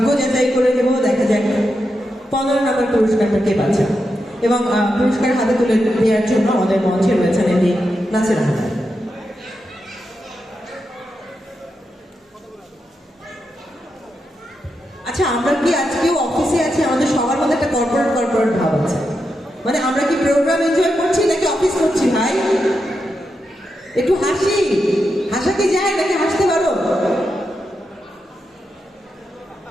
যাচাই করে নেব, দেখা যাক 15 নম্বর পুরস্কারটা কে পাচ্ছে। এবং পুরস্কার হাতে তুলে দেওয়ার জন্য আমাদের মঞ্চে রয়েছেন এমনি নাসির আহমেদ। আচ্ছা, আমরা কি আজকেও অফিসে আছি? আমাদের সবার মধ্যে একটা কর্পোরেট ভাব আছে। মানে আমরা কি প্রোগ্রাম এনজয় করছি নাকি অফিস করছি ভাই? একটু হাসি, হাসা কি যায় নাকি হাসতে পারো?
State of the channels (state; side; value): normal; both; correlation 0.86